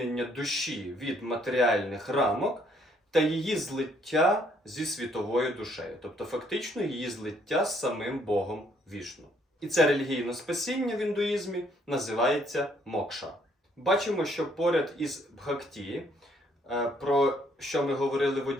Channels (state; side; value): normal; both; correlation 0.67